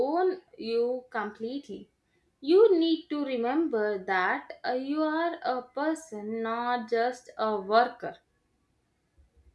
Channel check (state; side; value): identical; both; correlation 1.00